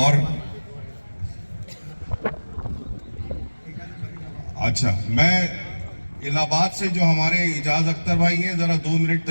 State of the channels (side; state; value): both; inverted; correlation -1.00